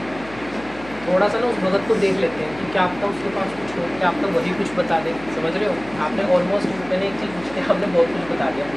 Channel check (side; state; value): left; noise; hum, 18 dB below the sound